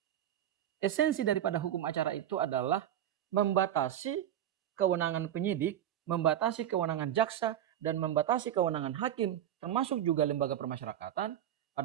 Esensi daripada hukum acara itu adalah membatasi kewenangan penyidik, membatasi kewenangan jaksa, dan membatasi kewenangan hakim, termasuk juga lembaga permasyarakatan,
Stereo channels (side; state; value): left; quieter; 11.0 dB